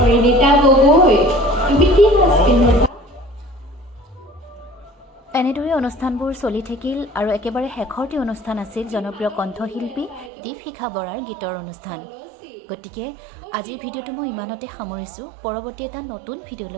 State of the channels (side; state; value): left; drops out; at 10.3 s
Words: গগৈ, তুমি কি সাজ পিন্ধিছা? এনেদৰে অনুষ্ঠানবোৰ চলি থাকিল আৰু একেবাৰে শেষৰটি অনুষ্ঠান আছিল জনপ্ৰিয় কণ্ঠশিল্পী দীপশিখা বৰাৰ গীতৰ অনুষ্ঠান। গতিকে আজিৰ ভিডিঅ'টো মই ইমানতে সামৰিছোঁ। পৰৱৰ্তী এটা নতুন